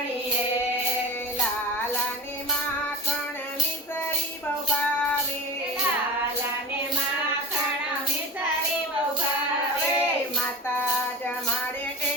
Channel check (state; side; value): normal; both; correlation 0.29